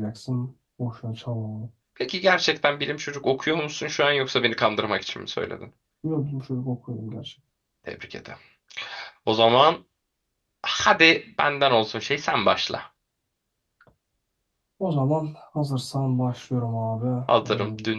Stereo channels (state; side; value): identical; both; correlation 1.00